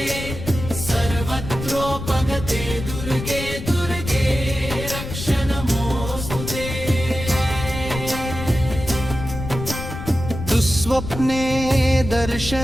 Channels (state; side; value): noise; left; rumble, 8 dB below the sound